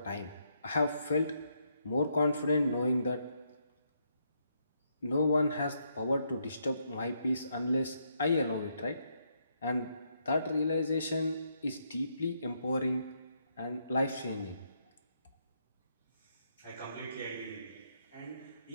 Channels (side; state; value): both; inverted; correlation -0.76